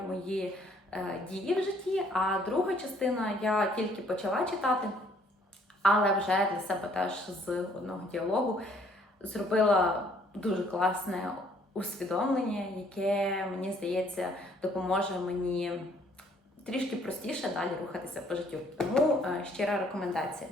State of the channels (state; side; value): normal; both; correlation 0.63